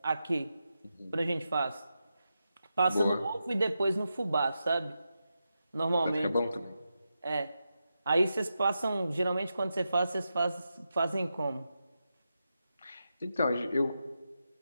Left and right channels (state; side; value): inverted; both; correlation -0.88